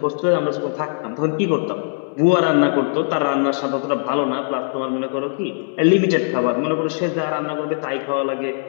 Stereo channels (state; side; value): silent; right; digital silence